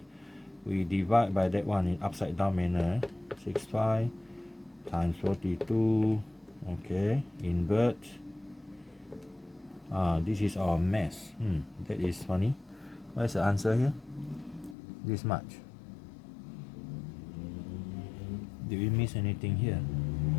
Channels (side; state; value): right; drops out; at 14.8 s